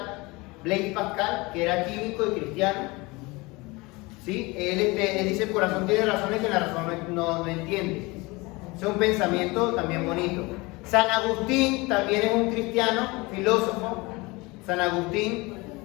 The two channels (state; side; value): quieter; right; 24.0 dB